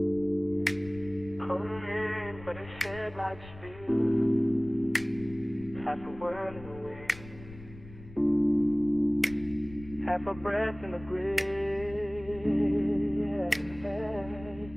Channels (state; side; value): noise; left; rumble, 17 dB below the sound